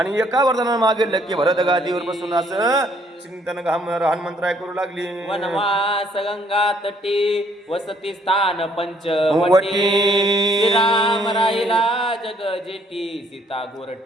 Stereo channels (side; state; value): both; normal; correlation 0.65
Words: एका वरदानानं मागितलं की भरत गादीवर बसून असं चिंतन हनुमंतराय करू लागली. वनवास गंगा तटी वसती स्थान पंचवटी श्रीराम राहिला जग जेटी सीता